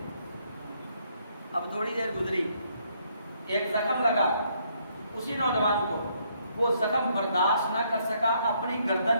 اب تھوڑی دیر گزری، ایک زخم لگا اسی نوجوان کو، وہ زخم برداشت نہ کر سکا، اپنی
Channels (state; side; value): inverted; both; correlation -0.70